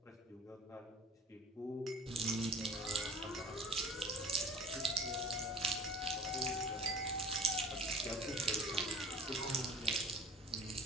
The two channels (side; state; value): both; normal; correlation 0.44